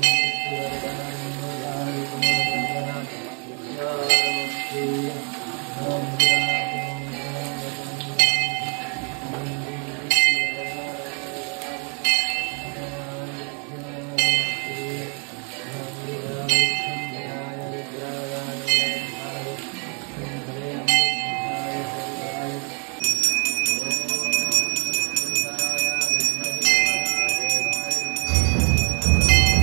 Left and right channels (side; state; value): left; quieter; 38.5 dB